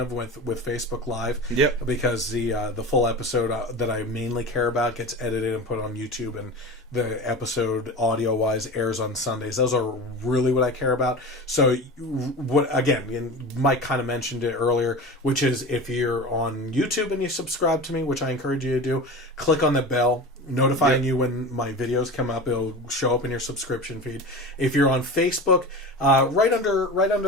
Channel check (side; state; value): both; normal; correlation 0.30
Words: with Facebook Live. Yep. Because the full episode that I mainly care about gets edited and put on YouTube, and the episode audio-wise airs on Sundays. Those are really what I care about. So, Mike kind of mentioned it earlier, which is if you're on YouTube and you subscribe to me, which I encourage you to do, click on the bell notifying you when my videos come up. It'll show up in your subscription feed. If you're on Facebook, right